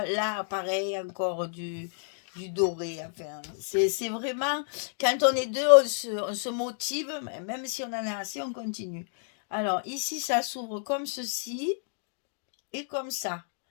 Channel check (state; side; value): silent; right; digital silence